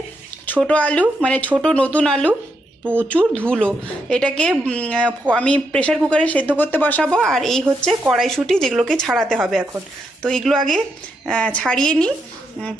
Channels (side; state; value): both; normal; correlation 0.81